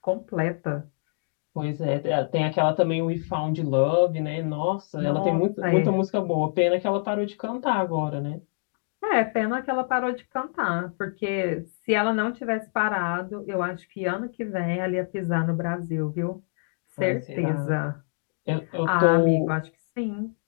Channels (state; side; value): silent; right; digital silence